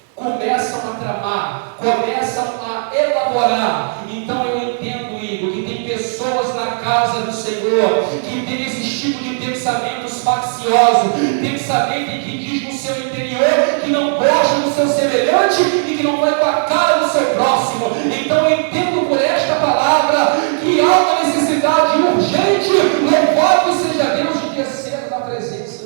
Começam a tramar, começam a elaborar. Então eu entendo, Igor, que tem pessoas na casa do Senhor que tem esse tipo de pensamentos facciosos, pensamento que diz no seu interior que não gosta do seu semelhante e que não vai com a cara do seu próximo. Então eu entendo por esta palavra que há uma necessidade urgente, louvado seja Deus, de descer na presença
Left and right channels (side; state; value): left; silent; 64 dB below the other